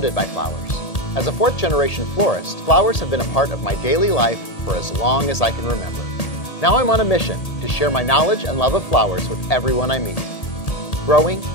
by flowers. As a fourth-generation florist, flowers have been a part of my daily life for as long as I can remember. Now I'm on a mission to share my knowledge and love of flowers with everyone I meet. Growing,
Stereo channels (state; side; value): late; right; 1.8 ms